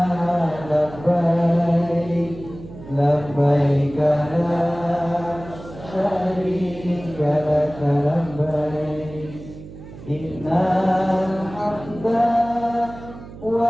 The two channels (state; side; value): noise; right; hum, 15 dB below the sound